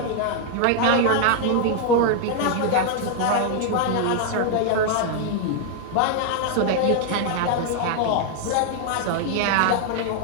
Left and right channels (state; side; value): different; both; correlation 0.00